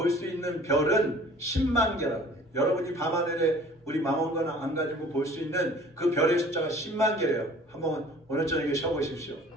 수 있는 별은 10만 개라고 해요. 여러분이 밤하늘에 우리 망원경 안 가지고 볼 수 있는 그 별의 숫자가 10만 개예요. 한번 오늘 저녁에 쉬어보십시오.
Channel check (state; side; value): normal; both; correlation 0.49